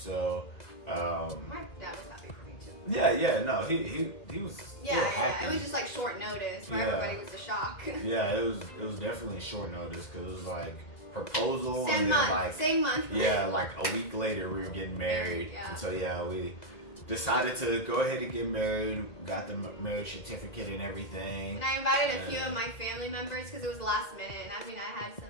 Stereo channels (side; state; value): right; late; 2.0 ms